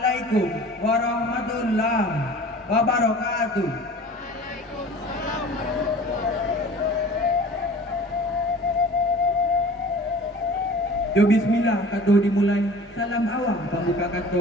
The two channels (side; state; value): both; normal; correlation 0.43